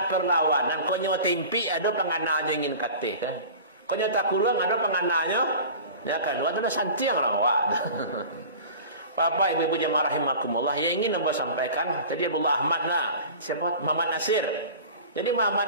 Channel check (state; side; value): inverted; both; correlation -0.39